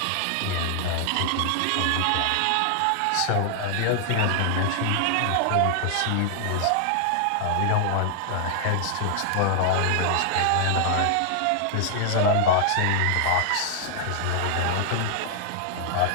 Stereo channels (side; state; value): both; different; correlation 0.00